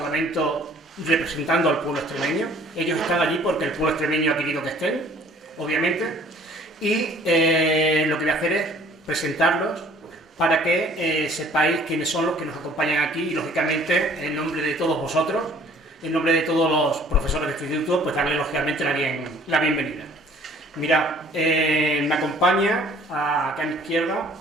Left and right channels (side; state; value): both; normal; correlation 0.55